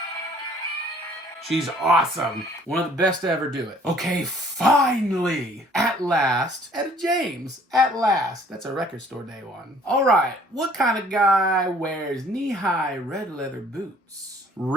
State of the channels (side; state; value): both; normal; correlation 0.57